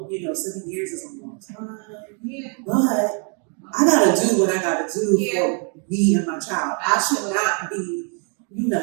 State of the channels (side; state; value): left; quieter; 39.7 dB